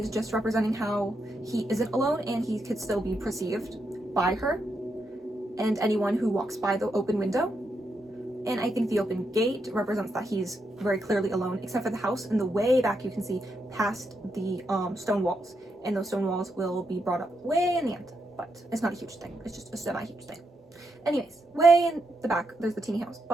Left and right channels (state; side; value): normal; both; correlation 0.82